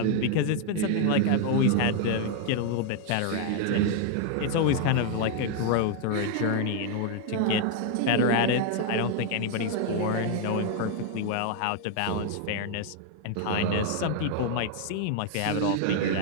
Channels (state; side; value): different; both; correlation 0.00